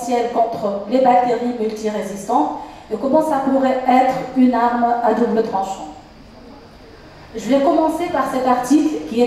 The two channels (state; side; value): identical; both; correlation 1.00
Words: contre les bactéries multirésistantes et comment ça pourrait être une arme à double tranchant. Je vais commencer par cet article qui